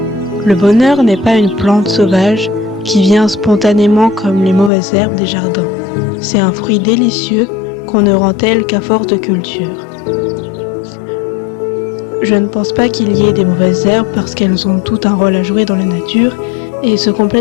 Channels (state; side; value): drops out; right; at 4.7 s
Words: Le bonheur n'est pas une plante sauvage qui vient spontanément comme les mauvaises herbes des jardins. C'est un fruit délicieux qu'on ne rend tel qu'à force de culture. Je ne pense pas qu'il y ait des mauvaises herbes parce qu'elles ont tout un rôle à jouer dans la nature et se